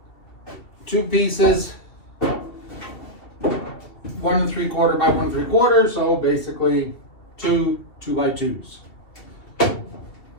pieces, 1 3/4 by 1 3/4. So basically two 2x2s.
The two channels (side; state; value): right; late; 2.7 ms